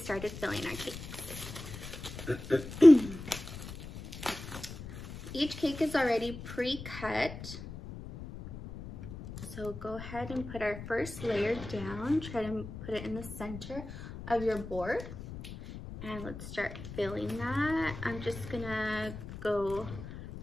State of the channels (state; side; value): noise; left; rumble, 11 dB below the sound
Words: filling our cake. Each cake is already pre-cut. So go ahead and put our first layer down. Try to put it in the center of your board. And let's start filling that. I'm just gonna go